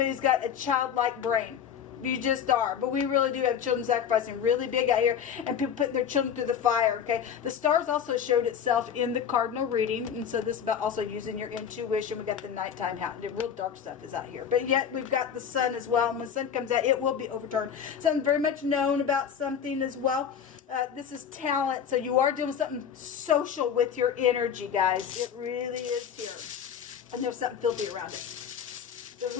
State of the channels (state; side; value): quieter; right; 8.1 dB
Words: who's got a childlike brain. You just are. But we really do have children sacrificing really big out here, and people putting their children through the fire. Okay, the stars also showed itself in the cardinal reading, and so this is about also using your intuition. We got the nighttime, the real dark stuff is out here, but yet we've got the sun as well, and when the sun comes out, it will be overturned. Something very much known about something as well. This is talent, so you are doing something social with your energy, guys. It really is here. And there's something filthy around it. So